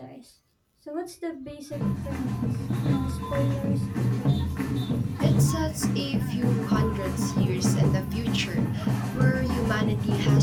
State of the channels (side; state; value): both; identical; correlation 1.00